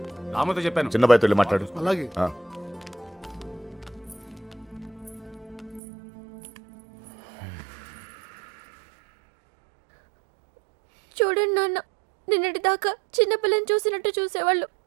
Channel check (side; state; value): left; drops out; at 5.8 s